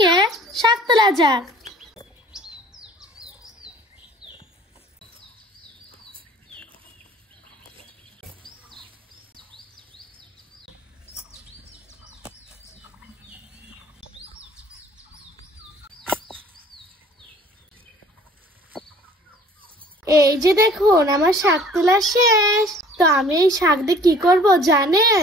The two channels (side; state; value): both; normal; correlation 0.52